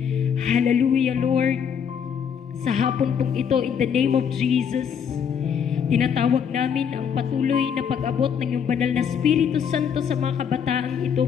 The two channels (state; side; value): quieter; right; 7.5 dB